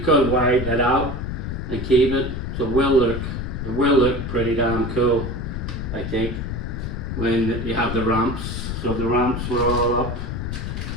could widen it out and keep it. So, it will look pretty damn cool, I think, when you have the ramps. So the ramps were all up.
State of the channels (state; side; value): noise; left; rumble, 4 dB below the sound